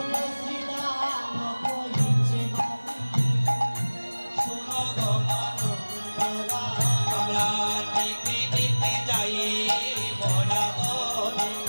শ্রীরাম কহিছে বাণী, শুনো গো মানব রানী। আমরা নীতি নীতি যাই মরা বনে।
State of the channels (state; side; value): inverted; both; correlation -1.00